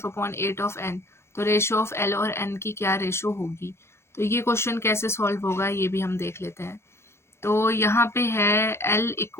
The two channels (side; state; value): right; late; 0.13 ms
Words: of n, तो रेशो ऑफ l और n की क्या रेशो होगी। तो ये क्वेश्चन कैसे सॉल्व होगा ये भी हम देख लेते हैं। तो यहाँ पे है l